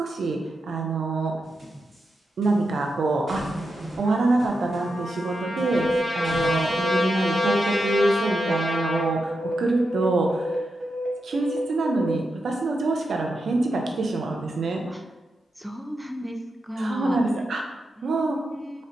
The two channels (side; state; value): both; normal; correlation 0.87